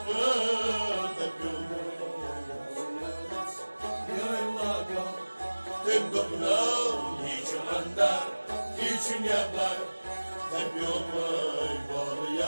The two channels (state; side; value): inverted; both; correlation -1.00